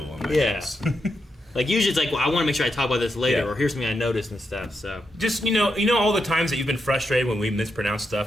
on my Yeah. notes. Like usually it's like, well, I want to make sure I talk about this later, Yeah. or here's something I noticed and stuff. So Just you know all the times that you've been frustrated when we mispronounce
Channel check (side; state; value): both; normal; correlation 0.84